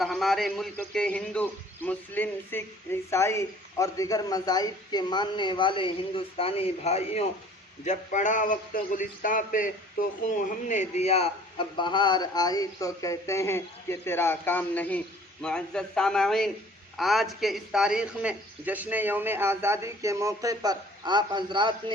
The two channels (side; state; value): both; normal; correlation 0.52